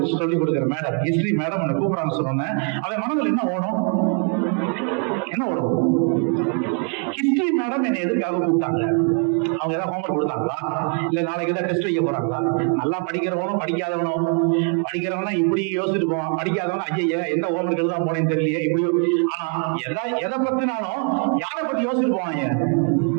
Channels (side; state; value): left; quieter; 39.6 dB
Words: சொல்லிக் கொடுக்குற மேடம், ஹிஸ்டரி மேடம் உன்னை கூப்பிடுறாங்க சொன்னேன். அவன் மனதில் என்ன ஓடும், ஹிஸ்டரி மேடம் என்னை எதுக்காக கூப்பிட்டாங்க? அவங்க ஏதாவது ஹோம்வொர்க் கொடுத்தாங்களா, இல்ல நாளைக்கு ஏதாவது டெஸ்ட் வைக்க போறாங்களா? நல்லா படிக்கிறவனும் படிக்காதவனும், படிக்கிறவனா இப்படி யோசிச்சுட்டு போவான், படிக்காதவனா ஐயா எந்த ஹோம்வொர்க் எழுதாம போனேன்னு தெரியலையே இப்படி. ஆனா எதை பத்தினாலும் யாரை பத்தி யோசிச்சுட்டு போவாங்க,